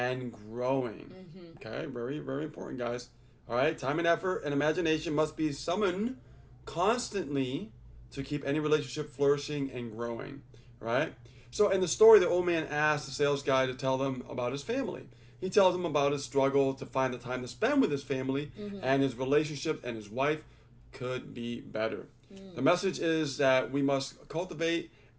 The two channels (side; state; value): both; identical; correlation 1.00